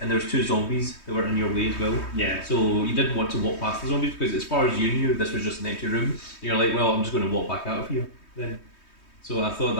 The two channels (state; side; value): late; right; 3.2 ms